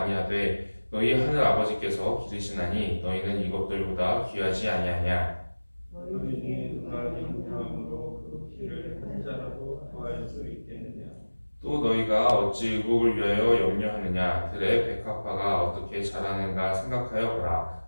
너희 하늘 아버지께서 기르시나니 너희는 이것들보다 귀하지 아니하냐. 너희 중에 누가 영광으로 그 피를 한 자라도 구할 수 있겠느냐. 또 너희가 어찌 의복을 위하여 염려하느냐. 들의 백합화가 어떻게 자라는가 생각하여 보라.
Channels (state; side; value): inverted; both; correlation -1.00